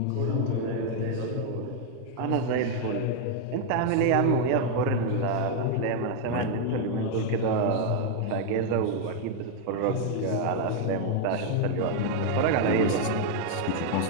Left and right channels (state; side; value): different; both; correlation 0.00